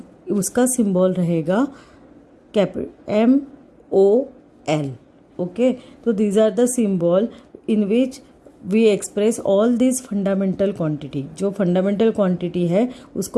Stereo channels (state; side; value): identical; both; correlation 1.00